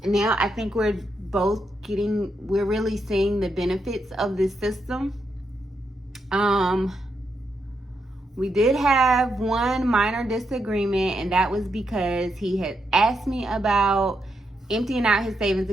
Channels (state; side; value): normal; both; correlation 0.82